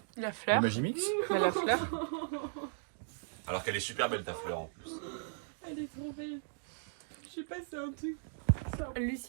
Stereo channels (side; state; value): left; silent; digital silence